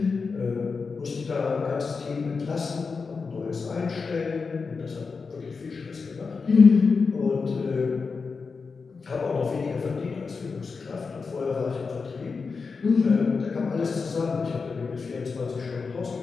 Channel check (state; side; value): quieter; right; 4.8 dB